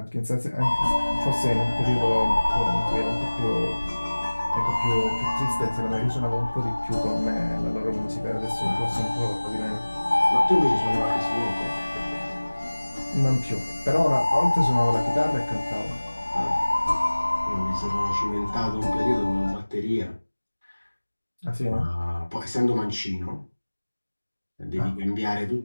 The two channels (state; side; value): inverted; both; correlation -1.00